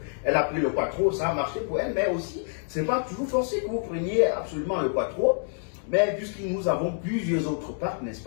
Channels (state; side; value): silent; right; 60 dB below the other